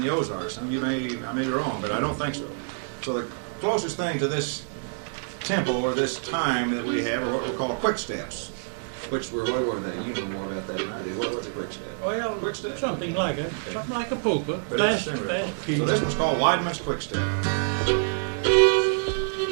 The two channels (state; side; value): silent; left; 60 dB below the other